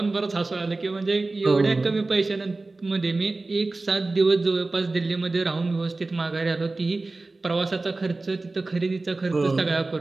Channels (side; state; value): left; quieter; 3.3 dB